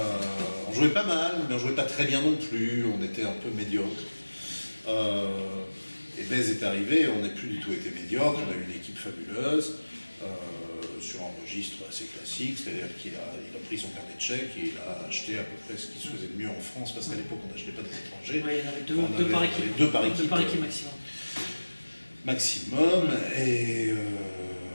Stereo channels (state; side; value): inverted; both; correlation -1.00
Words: On jouait pas mal, mais on jouait pas très bien non plus, on était un peu médiocre. Et Bèze est arrivé, on n'a plus du tout été médiocre, on a eu une équipe fabuleuse, sur un registre assez classique, c'est-à-dire qu'il a pris son carnet de chèques et il a acheté à peu près ce qui se faisait de mieux en France, parce qu'à l'époque on n'achetait pas des étrangers. Oui, il y en avait deux par équipe. Deux par équipe maximum, et